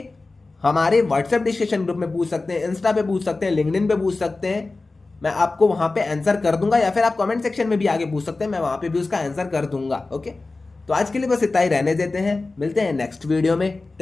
हमारे व्हाट्सएप डिस्कशन ग्रुप में पूछ सकते हैं, इंस्टा पे पूछ सकते हैं, लिंक्डइन पे पूछ सकते हैं, मैं आपको वहां पे आंसर कर दूंगा। या फिर आप कमेंट सेक्शन में भी आगे पूछ सकते हैं, मैं वहां पे भी उसका आंसर कर दूंगा। ओके, तो आज के लिए बस इतना ही रहने देते हैं, मिलते हैं नेक्स्ट वीडियो में।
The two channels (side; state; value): right; quieter; 3.5 dB